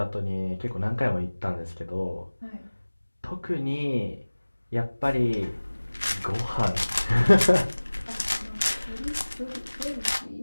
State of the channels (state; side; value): inverted; both; correlation -1.00